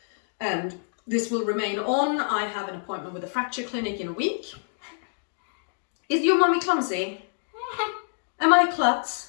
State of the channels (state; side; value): silent; right; digital silence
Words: and this will remain on. I have an appointment with a fracture clinic in a week. Is your mummy clumsy? Am I a klutz?